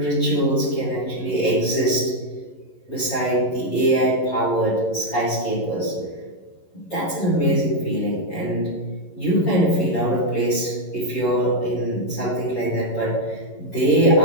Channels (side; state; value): right; late; 11 ms